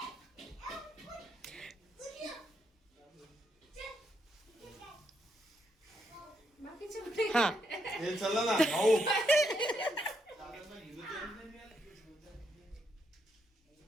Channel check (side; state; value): both; normal; correlation 0.78